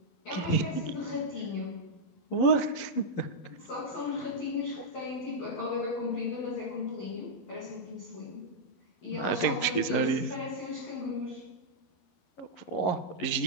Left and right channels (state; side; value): late; right; 11 ms